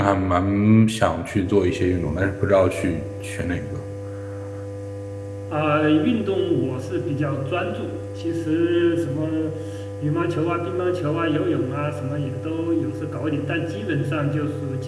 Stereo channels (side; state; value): both; identical; correlation 1.00